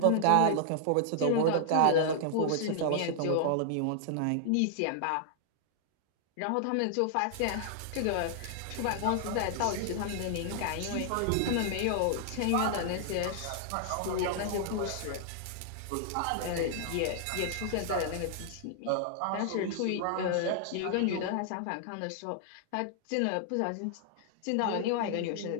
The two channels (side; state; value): both; different; correlation -0.01